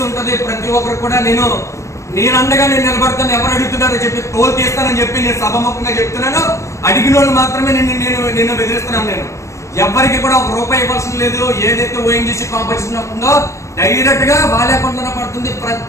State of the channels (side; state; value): right; late; 0.15 ms